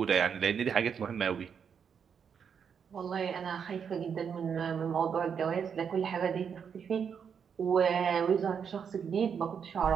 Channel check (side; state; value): left; quieter; 7.1 dB